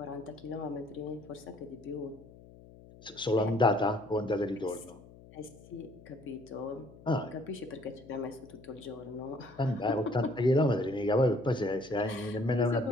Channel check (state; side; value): noise; left; hum, 21 dB below the sound